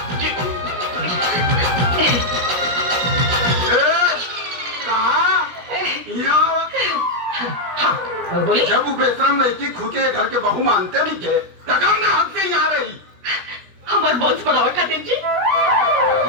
जी। कहाँ यहाँ बोली जब वो बेशरम लड़की खुद के घर के बहू मानते नहीं के तकम ने हद से यहाँ रही। हमारे बॉन्स बढ़ावा खातिर जी।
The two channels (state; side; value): late; left; 17 ms